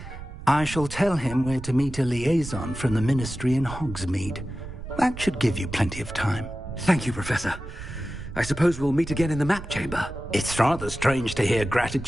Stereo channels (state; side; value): noise; right; rumble, 11 dB below the sound